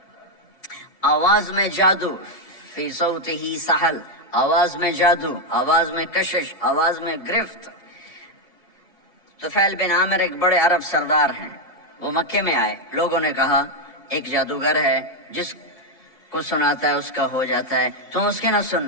آواز میں جادو، فی صوتہ سحل، آواز میں جادو، آواز میں کشش، آواز میں گرفت۔ طفیل بن عامر ایک بڑے عرب سردار ہیں، وہ مکے میں آئے، لوگوں نے کہا ایک جادوگر ہے جس کو سناتا ہے اس کا ہو جاتا ہے، تم اس کے نہ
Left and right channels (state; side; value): late; right; 2.8 ms